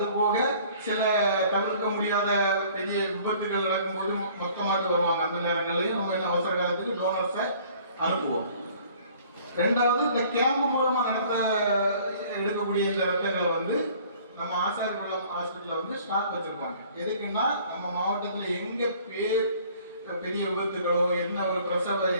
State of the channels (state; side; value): inverted; both; correlation -0.54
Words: சில தவிர்க்க முடியாத பெரிய விபத்துகள் நடக்கும்போது மொத்தமாட்டு வருவாங்க. அந்த நேரங்கள்லையும் நம்ம என்ன அவசர காலத்துக்கு டோனர்ஸை அனுப்புவோம். ரெண்டாவது, இந்த கேம்ப் மூலமா எடுக்கக்கூடிய இந்த ரத்தங்களை வந்து நம்ம ஆசாரிகுளம் ஹாஸ்பிட்டல்ல வந்து ஸ்டாக் வச்சிருப்பாங்க. எதுக்குன்னா நம்ம மாவட்டத்தில் எங்க பெரிய விபத்துகளோ என்ன ஒரு பிரசவ